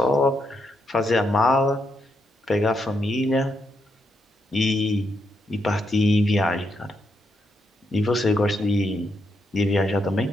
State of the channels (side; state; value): both; normal; correlation 0.81